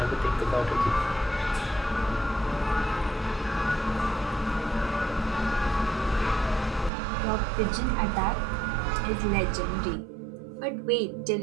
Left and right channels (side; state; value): left; drops out; at 6.9 s